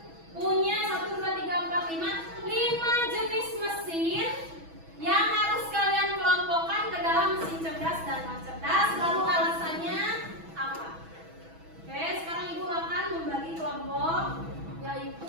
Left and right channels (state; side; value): late; left; 6.1 ms